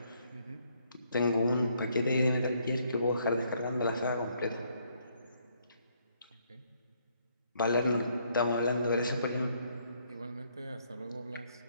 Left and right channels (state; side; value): inverted; both; correlation -0.70